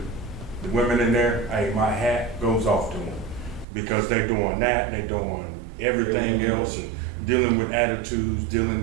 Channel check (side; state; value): left; drops out; at 3.7 s